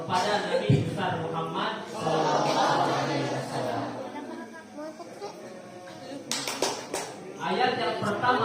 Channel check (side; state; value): both; identical; correlation 1.00